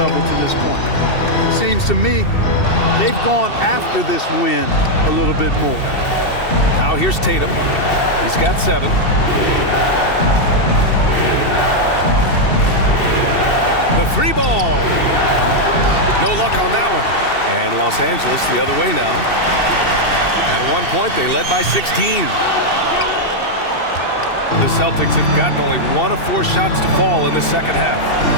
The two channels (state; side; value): late; right; 2.7 ms